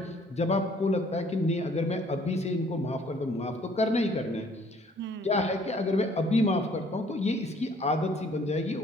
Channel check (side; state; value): both; normal; correlation 0.59